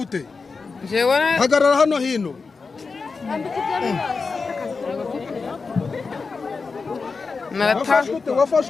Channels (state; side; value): quieter; right; 4.5 dB